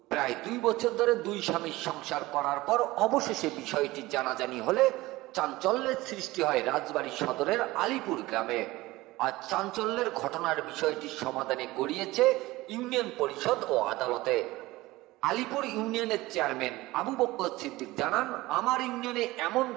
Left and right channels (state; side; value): quieter; left; 19.2 dB